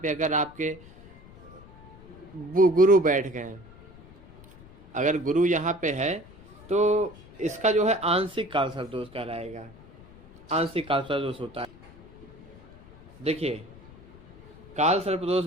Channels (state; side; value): noise; left; rumble, 21 dB below the sound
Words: पे अगर आपके गुरु बैठ गए, अगर गुरु यहाँ पे है तो इसका जो है आंशिक काल सर्पदोष कहलाएगा। आंशिक काल सर्पदोष होता है। देखिए, काल सर्पदोष